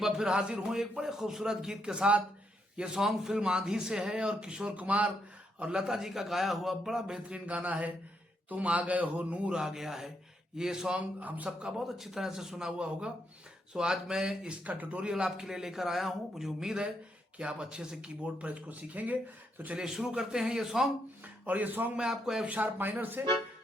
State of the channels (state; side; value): normal; both; correlation 0.78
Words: बार फिर हाजिर हूँ एक बड़े खूबसूरत गीत के साथ। ये सॉन्ग फिल्म आंधी से है और किशोर कुमार और लता जी का गाया हुआ बड़ा बेहतरीन गाना है। तुम आ गए हो, नूर आ गया है। ये सॉन्ग हम सबका बहुत अच्छी तरह से सुना हुआ होगा। सो आज मैं इसका ट्यूटोरियल आपके लिए लेकर आया हूँ। मुझे उम्मीद है कि आप अच्छे से कीबोर्ड पर इसको सीखेंगे। तो चलिए शुरू करते हैं ये सॉन्ग। और ये सॉन्ग मैं आपको एफ शार्प माइनर से